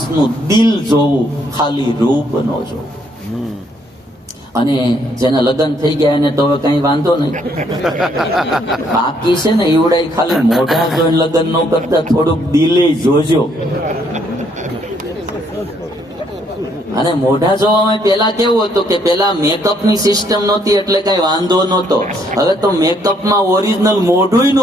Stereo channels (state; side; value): normal; both; correlation 0.69